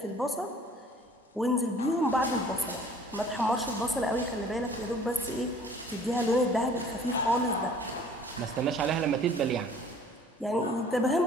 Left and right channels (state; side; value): normal; both; correlation 0.52